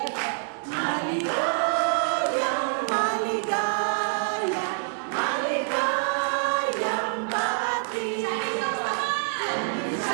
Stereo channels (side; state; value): left; silent; digital silence